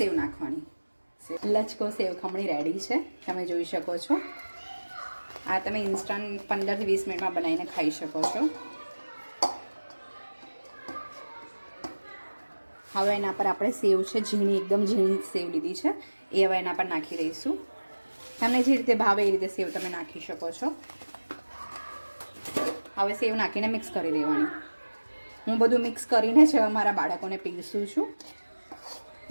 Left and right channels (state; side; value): inverted; both; correlation -1.00